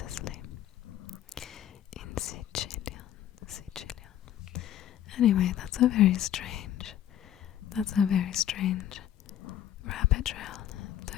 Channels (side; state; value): right; quieter; 11.2 dB